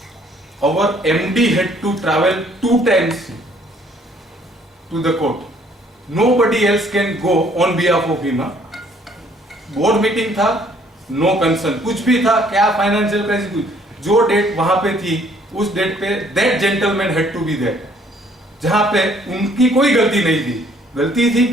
Our MD had to travel 2 times to the court. Nobody else can go on behalf of him. Board meeting था, नो कंसर्न, कुछ भी था, क्या फाइनेंशियल क्राइसिस, कुछ जो डेट वहां पे थी उस डेट पे that gentleman had to be there, जहां पे उनकी कोई गलती नहीं थी। गलती थी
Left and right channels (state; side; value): normal; both; correlation 0.62